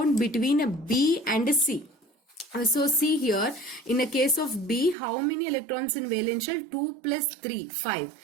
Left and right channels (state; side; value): drops out; left; at 5.0 s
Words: between a B and a C. So see here, in the case of B, how many electrons in valence shell? 2 plus 3,